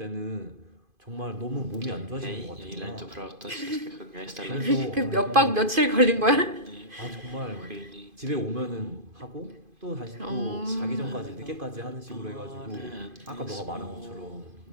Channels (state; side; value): late; left; 2.5 ms